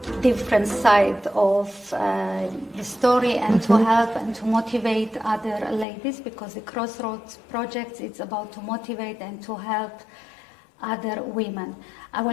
different side of the story and to help and to motivate other ladies, because the CrossRoads project is about to motivate and to help other women. I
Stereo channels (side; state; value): right; drops out; at 5.9 s